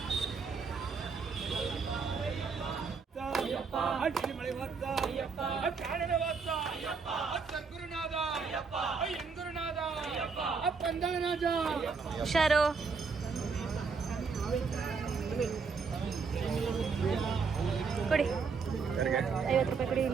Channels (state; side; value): quieter; left; 5.1 dB